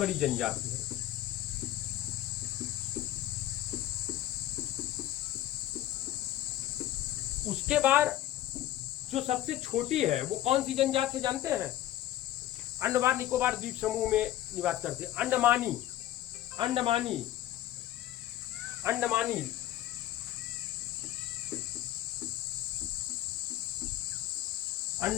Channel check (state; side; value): quieter; right; 13.7 dB